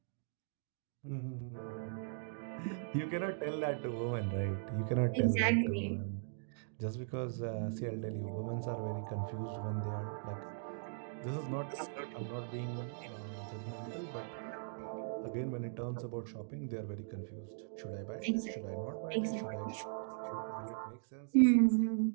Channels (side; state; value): left; silent; digital silence